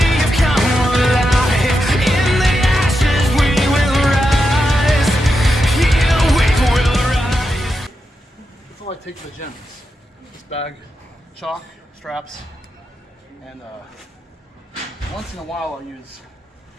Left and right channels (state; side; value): normal; both; correlation 0.87